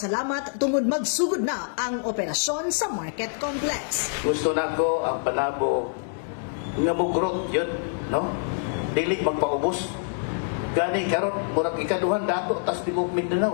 tungod magsugod na ang operasyon sa Market Complex. Gusto nako ang Panabo nga mugrot yun, no? Dili magpaubos. Gani karon murag ikaduhan dato tas tibok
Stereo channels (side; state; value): right; silent; digital silence